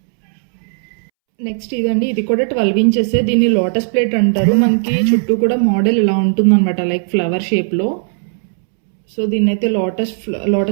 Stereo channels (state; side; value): silent; left; 69 dB below the other